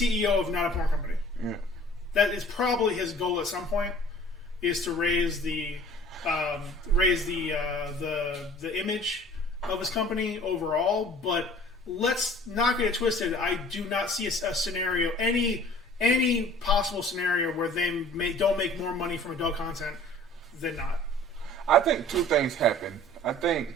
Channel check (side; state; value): both; normal; correlation 0.48